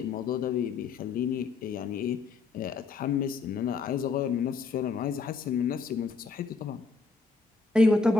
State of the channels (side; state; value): right; quieter; 4.4 dB